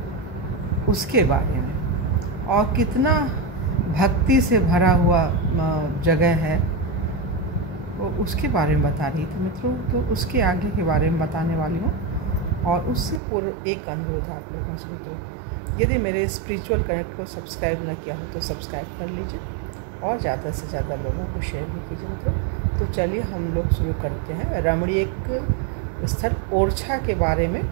उसके बारे में, और कितना भक्ति से भरा हुआ जगह है वो उसके बारे में बता रही थी मित्रों। तो उसके आगे के बारे में बताने वाली हूँ, और उससे पूर्व एक अनुरोध आप लोगों से मित्रों, यदि मेरे स्पिरिचुअल कनेक्ट को सब्सक्राइब न किया हो तो सब्सक्राइब कर लीजिए और ज़्यादा से ज़्यादा लोगों को शेयर भी कीजिए मित्रों। तो चलिए हम लोग शुरू करते हैं रमणीक स्थल ओरछा के बारे में,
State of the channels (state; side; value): drops out; left; at 13.2 s